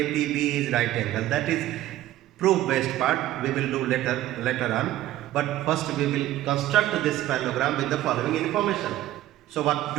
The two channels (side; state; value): left; quieter; 14.4 dB